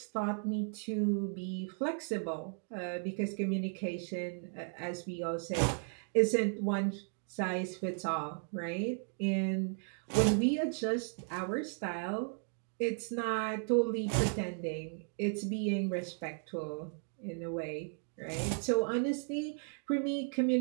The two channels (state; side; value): silent; left; 54 dB below the other